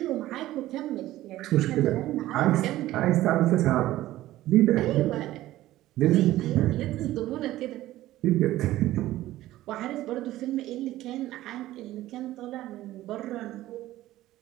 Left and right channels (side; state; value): left; quieter; 15.4 dB